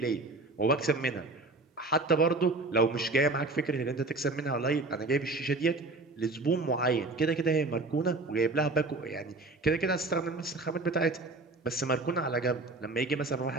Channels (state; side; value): quieter; left; 3.2 dB